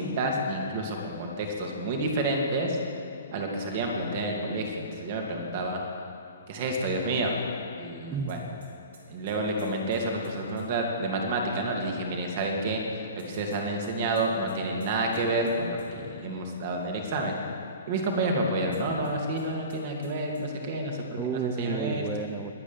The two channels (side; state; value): both; inverted; correlation -0.35